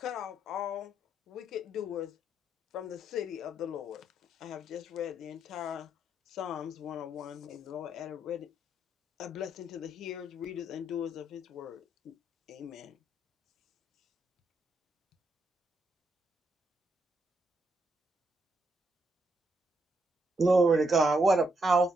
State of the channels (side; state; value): both; normal; correlation 0.77